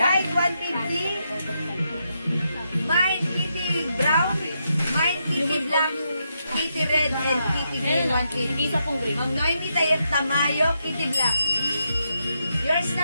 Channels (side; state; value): both; inverted; correlation -0.82